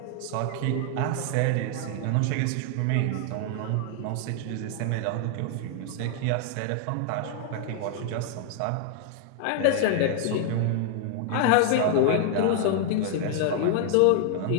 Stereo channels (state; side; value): different; both; correlation 0.00